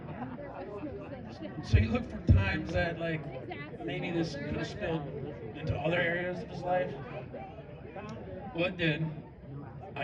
So you look for times that, like, maybe this could have spilled into other areas of his life. Well, it did. I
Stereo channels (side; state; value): both; identical; correlation 1.00